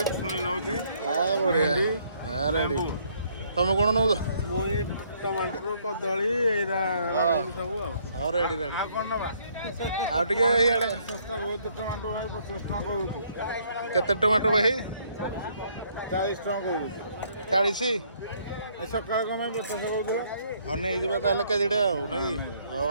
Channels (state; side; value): inverted; both; correlation -0.67